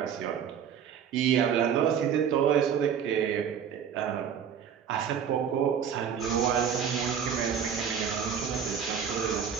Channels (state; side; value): quieter; left; 7.9 dB